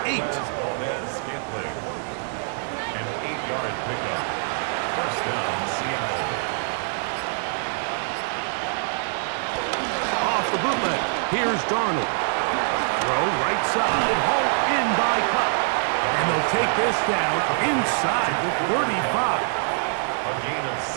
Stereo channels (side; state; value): left; silent; 62 dB below the other